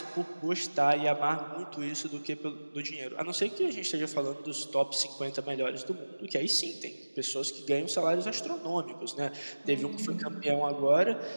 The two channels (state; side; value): inverted; both; correlation -1.00